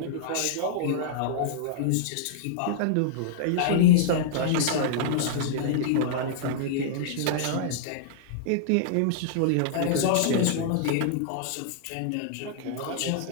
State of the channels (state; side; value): different; both; correlation -0.02